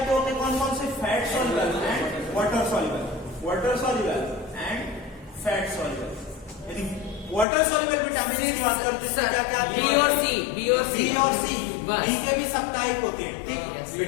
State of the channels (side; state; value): right; drops out; at 7.5 s